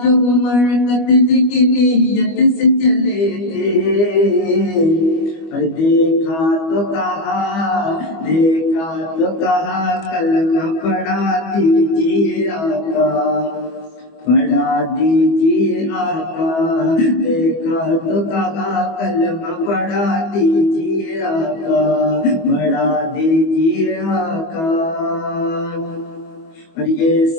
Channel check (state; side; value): late; right; 25 ms